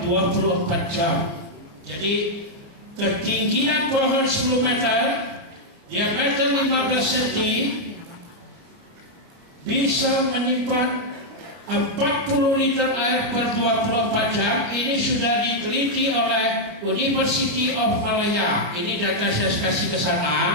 24 jam. Jadi ketinggian pohon 10 meter, diameter 15 cm, bisa menyimpan 40 liter air per 24 jam. Ini sudah diteliti oleh University of Malaya. Ini data saya kasih ke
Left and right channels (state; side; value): late; left; 29 ms